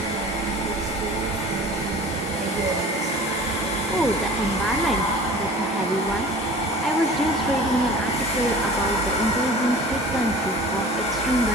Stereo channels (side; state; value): both; normal; correlation 0.42